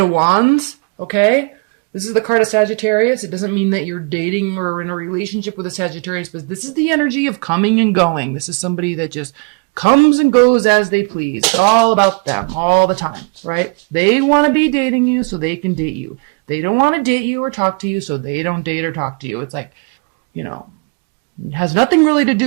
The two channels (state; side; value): quieter; left; 36.3 dB